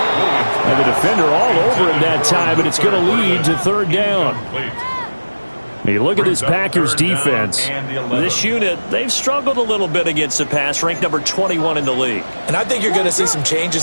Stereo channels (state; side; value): inverted; both; correlation -1.00